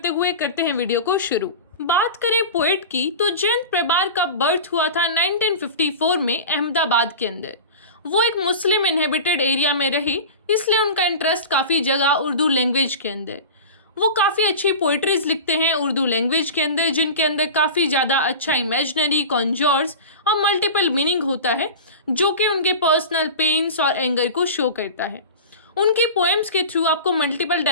हुए करते हैं वीडियो को शुरू। बात करें पोएट की तो जयंत प्रमार का बर्थ हुआ था 1954 में अहमदाबाद के अंदर। वो एक मुस्लिम इनहेबिटेड एरिया में रही, इसलिए उनका इंटरेस्ट काफ़ी जगह उर्दू लैंग्वेज के अंदर। वो काफ़ी अच्छी पोइट्रीज लिखते हैं उर्दू लैंग्वेज के अंदर, जिनके अंदर काफ़ी ज़्यादा अच्छा इमेजिनरी, कॉन्जर्स और मल्टीपल मीनिंग होता है, जो कि उनके पर्सनल पेन्स और एंगर को शो करता है। उनकी पोएम्स के थ्रू आपको मल्टीपल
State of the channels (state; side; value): inverted; both; correlation -0.32